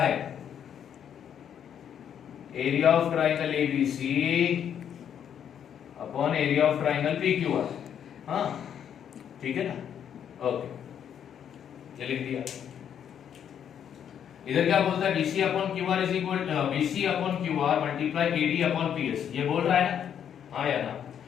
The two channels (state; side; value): quieter; right; 8.9 dB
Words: Area of triangle ABC upon area of triangle PQR। हाँ ठीक है ना? ओके, ये लिख दिया। इधर क्या बोलता है? BC upon QR is equal BC upon QR multiply AD upon PS। ये बोल रहा है ना? हाँ या ना?